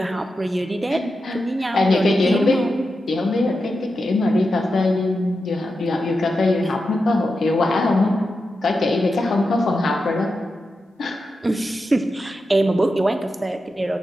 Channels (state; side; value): normal; both; correlation 0.89